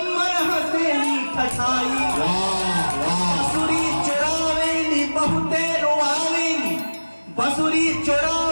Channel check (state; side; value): inverted; both; correlation -1.00